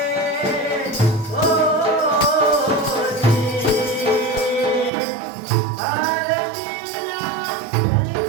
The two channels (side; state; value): left; drops out; at 4.9 s